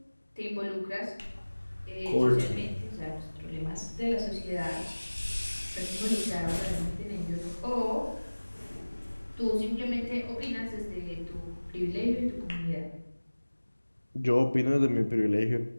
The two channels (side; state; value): both; inverted; correlation -1.00